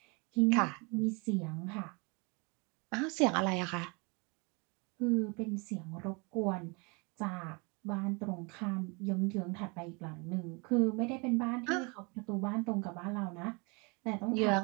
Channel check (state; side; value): quieter; left; 30.3 dB